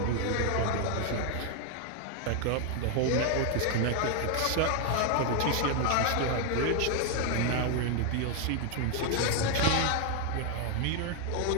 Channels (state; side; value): different; both; correlation 0.00